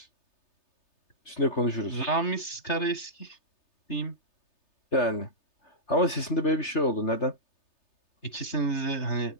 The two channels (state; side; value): late; right; 3.3 ms